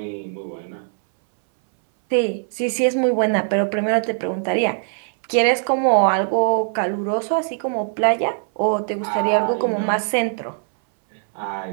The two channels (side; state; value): left; silent; 63 dB below the other